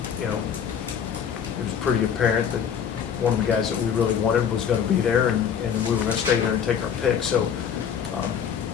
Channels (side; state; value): right; quieter; 7.9 dB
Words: you know, it was pretty apparent that one of the guys that we really wanted was gonna be there, and we were gonna stay there and take our pick. So